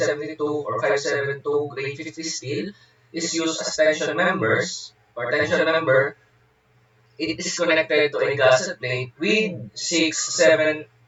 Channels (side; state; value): both; identical; correlation 1.00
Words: or 572 grade 50 steel is used as tension members or tension member, it is connected to a gusset plate with